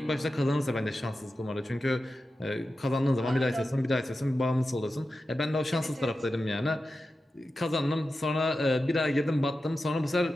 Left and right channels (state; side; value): normal; both; correlation 0.92